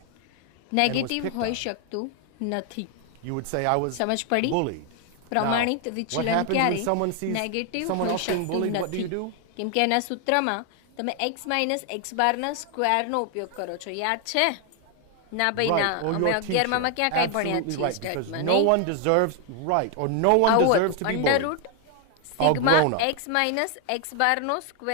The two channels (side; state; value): both; different; correlation 0.00